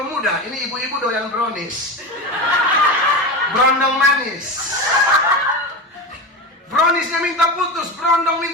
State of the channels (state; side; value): normal; both; correlation 0.22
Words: Ini ibu-ibu doyan brownies, brondong manis. Bronisnya minta putus, Brondong